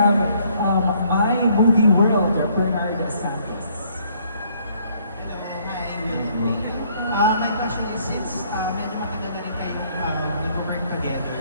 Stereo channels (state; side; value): inverted; both; correlation -0.65